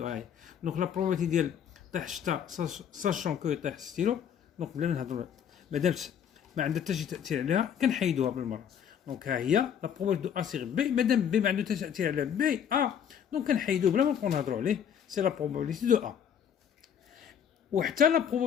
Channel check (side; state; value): right; quieter; 8.5 dB